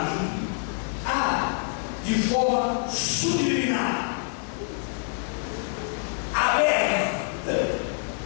De forma subliminar, aberta,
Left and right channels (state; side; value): silent; right; 58 dB below the other